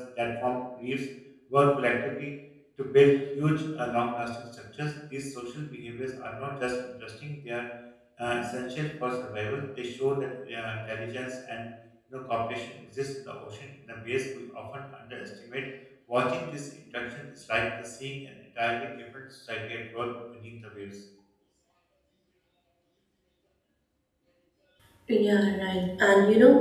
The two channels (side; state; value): both; identical; correlation 1.00